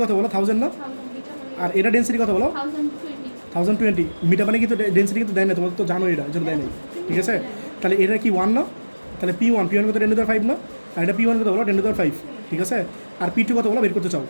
কত বলো 1000 না, আর এটা ডেন্সিটি কত বলো 1020। মিঠা পানি কিন্তু ডেন্সিটি কিন্তু দেয় না, তোমার তো জানো এটা, এজন্য দেয় নাই, ঠিক আছে। তাহলে এটা কি 1 না, তাহলে P1 কত 10⁵ না, আর এটা P1 কত বলো 10⁵, ঠিক আছে। আর P2 কত বলো বের করতে চাও,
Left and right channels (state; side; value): inverted; both; correlation -1.00